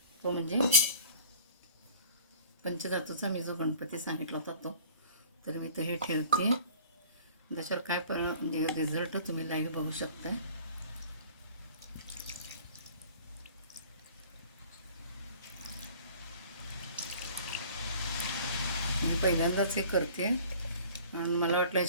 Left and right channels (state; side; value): inverted; both; correlation -0.46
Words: तो म्हणजे पंचधातूचा मी जो गणपती सांगितला होता तो. तर मी तर हे ठेवते. त्याच्यावर काय म्हणजे रिझल्ट तुम्ही लाईव्ह बघू शकता. मी पहिल्यांदाच हे करते आणि मला वाटलं